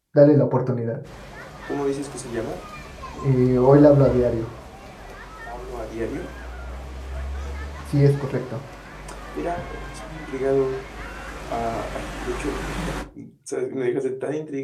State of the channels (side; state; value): both; identical; correlation 1.00